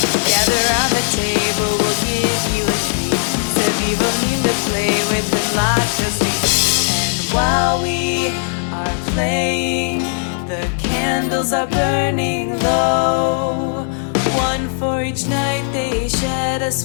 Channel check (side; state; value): right; silent; 65 dB below the other